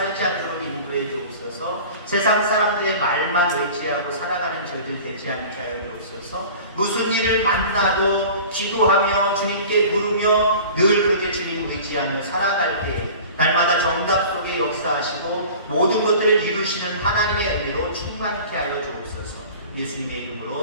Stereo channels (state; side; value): inverted; both; correlation -0.40